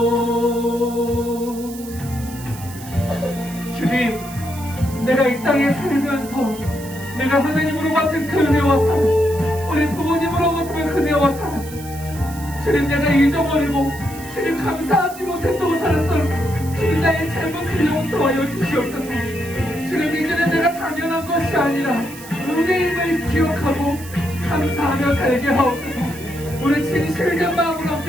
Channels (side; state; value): right; noise; hiss, 16 dB below the sound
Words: 주님, 내가 이 땅에 살면서 내가 하나님으로 받은 그 은혜와 사랑 우리 부모님으로 받은 그 은혜와 사랑 주님 내가 잊어버리고 주님 감사하지 못했다고 살았던 주님 나의 잘못을 용서하여 주시옵소서. 주님 이제는 내가 당연한 것이 아니라 은혜임을 기억하고 감사하며 살게 하옵소서. 우리 진실된 마음으로